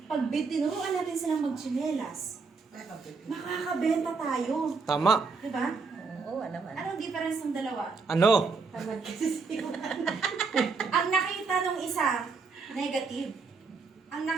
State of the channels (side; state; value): left; quieter; 4.7 dB